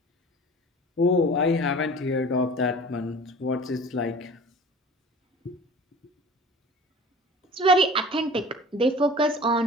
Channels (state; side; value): normal; both; correlation 0.42